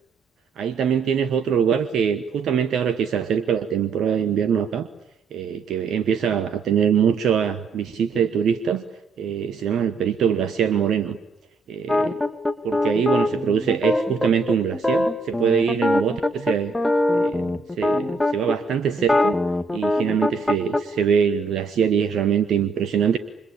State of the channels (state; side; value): quieter; left; 4.3 dB